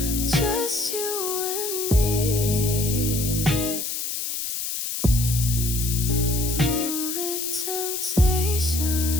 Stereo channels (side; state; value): left; noise; hiss, 3 dB below the sound